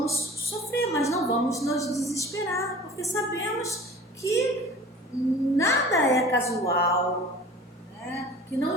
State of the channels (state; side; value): normal; both; correlation 0.42